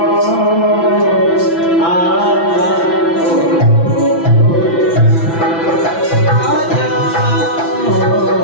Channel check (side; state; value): right; late; 6.0 ms